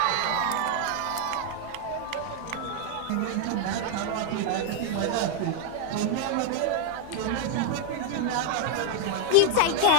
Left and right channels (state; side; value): different; both; correlation 0.00